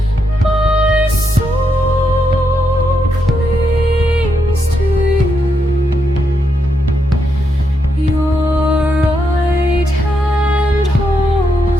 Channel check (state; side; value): normal; both; correlation 0.81